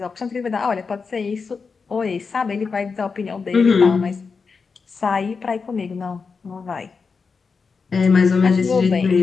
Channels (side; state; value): right; quieter; 5.1 dB